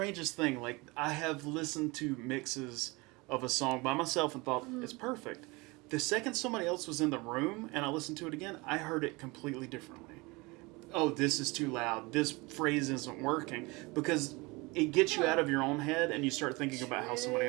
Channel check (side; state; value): left; quieter; 24.8 dB